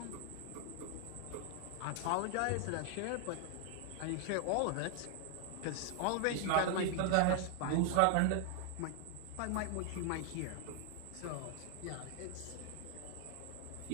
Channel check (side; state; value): both; different; correlation 0.00